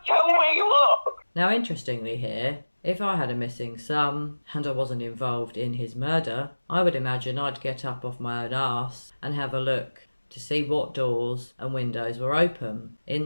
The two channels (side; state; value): both; inverted; correlation -1.00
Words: tell me what. Now interestingly here, if I had a missing son and I wasn't involved in his murder, I would imagine I'd get up off my own arse and have a look to see what doors and windows were open.